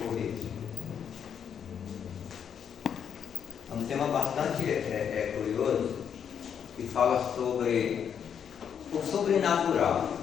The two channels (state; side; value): quieter; right; 8.0 dB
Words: um tema bastante curioso, que fala sobre o sobrenatural.